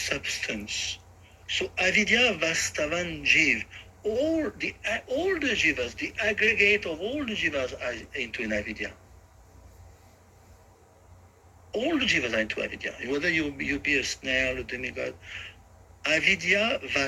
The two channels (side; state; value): both; identical; correlation 1.00